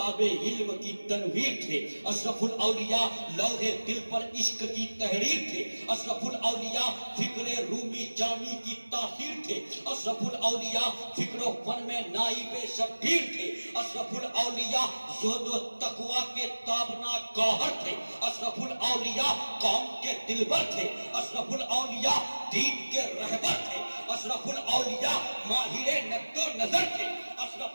علم کی تنویر تھے, اشرف الاولیاء لوح دل پر عشق کی تحریر تھے, اشرف الاولیاء فکر رومی جامی کی تاثیر تھے, اشرف الاولیاء فکر و فن میں نائب شبیر تھے, اشرف الاولیاء زہد و تقوی کے تابناک گوہر تھے, اشرف الاولیاء قوم کے دلبر تھے, اشرف الاولیاء دین کے رہبر تھے, اشرف الاولیاء ماہر نقد و نظر تھے,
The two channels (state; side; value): inverted; both; correlation -1.00